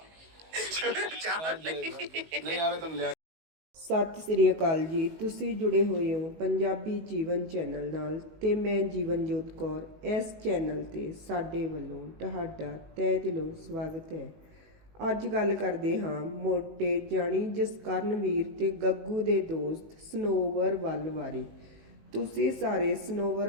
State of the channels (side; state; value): left; late; 19 ms